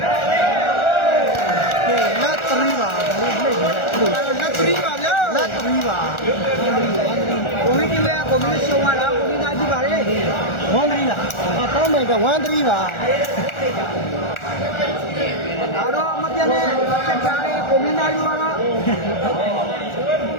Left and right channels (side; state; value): right; late; 1.4 ms